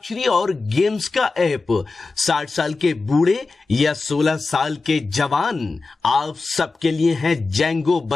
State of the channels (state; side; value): quieter; right; 3.8 dB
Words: और गेम्स का ऐप। 60 साल के बूढ़े या 16 साल के जवान, आप सबके लिए है जेंगो